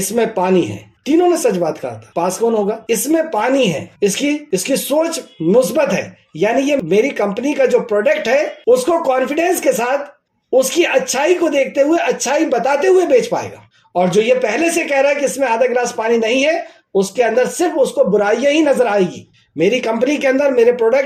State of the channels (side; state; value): both; identical; correlation 1.00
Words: میں پانی ہے. تینوں نے سچ بات کہا تھا. پاس کون ہوگا؟ اس میں پانی ہے. اس کی سوچ مثبت ہے، یعنی یہ میری کمپنی کا جو پروڈکٹ ہے اس کو کانفیڈنس کے ساتھ، اس کی اچھائی کو دیکھتے ہوئے، اچھائی بتاتے ہوئے بیچ پائے گا. اور جو یہ پہلے سے کہہ رہا ہے کہ اس میں آدھا گلاس پانی نہیں ہے، اس کے اندر صرف اس کو برائیاں ہی نظر آئے گی. میری کمپنی کے اندر، میرے